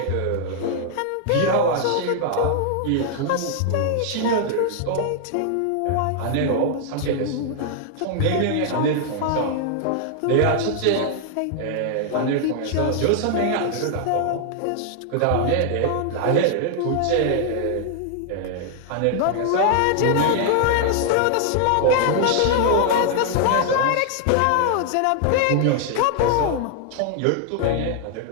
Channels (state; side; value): different; both; correlation 0.00